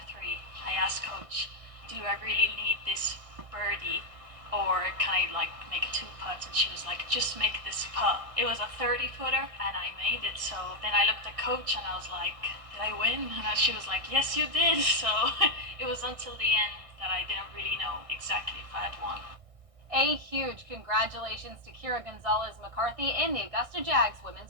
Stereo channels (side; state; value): left; late; 1.6 ms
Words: 3, I asked coach, do I really need this birdie? Or can I like make a 2 putts? And she was like, just make this putt. It was a 30-footer and I made it. So then I looked at coach and I was like, did I win? And she was like, yes, you did. So it was until the end that I didn't really know exactly if I had won. A huge congratulations to Kira Gonzalez-McCarthy and the Augusta Jags